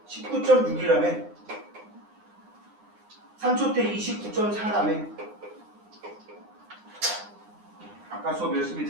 19.6이라며. 3초 때 29.4라며. 아까 수업 열심히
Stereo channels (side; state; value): left; late; 9.7 ms